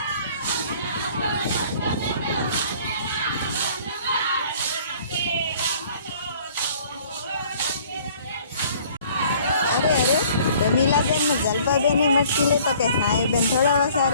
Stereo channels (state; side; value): inverted; both; correlation -0.54